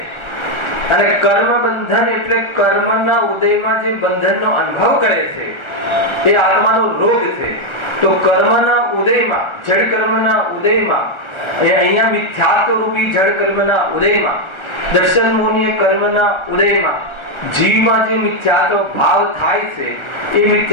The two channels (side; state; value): right; late; 1.4 ms